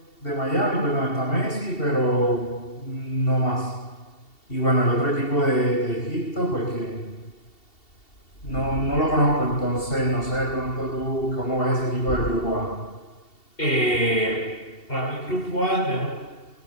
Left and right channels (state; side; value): late; right; 2.7 ms